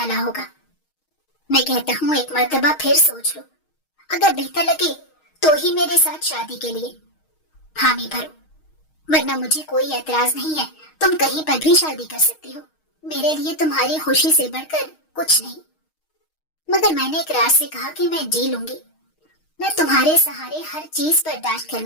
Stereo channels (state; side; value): late; right; 6.4 ms